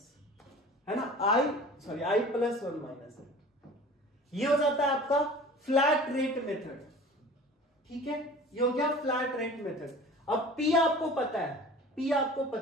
है ना, I प्लस 1 माइनस n, ये हो जाता है आपका फ्लैट रेट मेथड, ठीक है। ये हो गया फ्लैट रेट मेथड। अब P आपको पता है, P आपको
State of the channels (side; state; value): both; normal; correlation 0.41